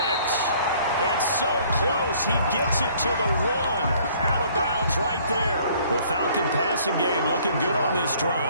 And so close, he gets it to the 1. Out of bounds right there. The Falcon passing game looking good on this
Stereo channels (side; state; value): both; inverted; correlation -0.58